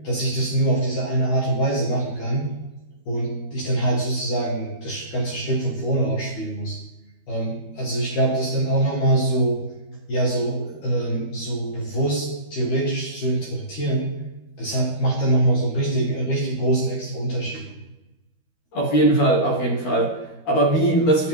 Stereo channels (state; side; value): late; right; 13 ms